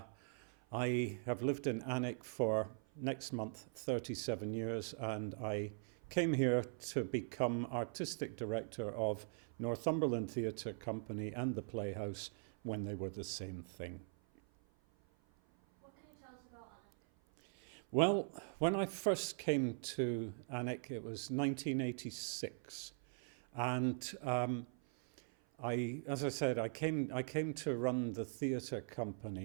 I have lived in Alnwick for next month 37 years, and I came here to become artistic director of Northumberland Theatre Company and the Playhouse when they were the same thing. What can you tell us about Alnwick? Well, when I first came to Alnwick, it was 1986, and as I said, I came to run the theatre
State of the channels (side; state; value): left; silent; 50 dB below the other